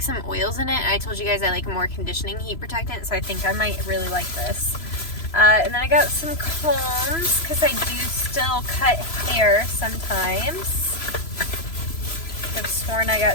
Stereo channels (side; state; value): right; late; 3.0 ms